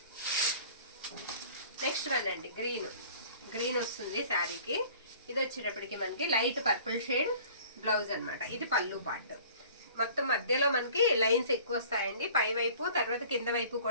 నెక్స్ట్ వన్ అండి, గ్రీన్. గ్రీన్ వస్తుంది శారీకి. ఇది వచ్చేటప్పటికి మనకి లైట్ పర్పుల్ షేడ్ బ్లౌజ్ అనమాట. ఇది పళ్ళు పార్ట్. మొత్తం మధ్యలో మనకి లైన్స్ ఎక్కువ వస్తాయండి, పై వైపు తర్వాత కింద వైపు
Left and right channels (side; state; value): both; inverted; correlation -0.48